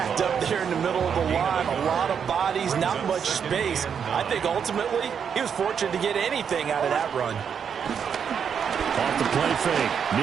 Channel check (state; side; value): quieter; left; 7.3 dB